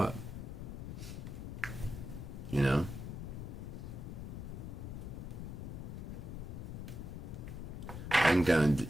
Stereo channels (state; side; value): noise; left; rumble, 6 dB below the sound